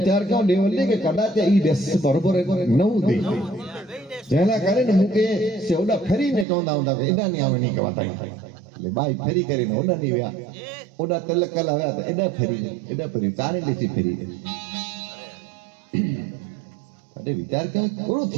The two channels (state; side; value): drops out; left; at 6.5 s